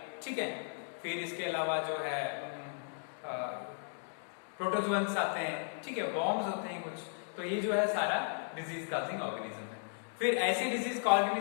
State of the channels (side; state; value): right; silent; digital silence